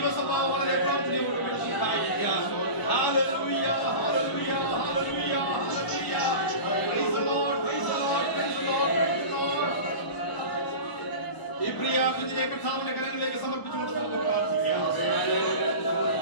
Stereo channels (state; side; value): late; right; 1.0 ms